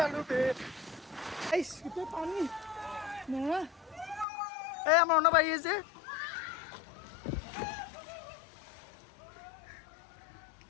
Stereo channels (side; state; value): right; drops out; at 4.2 s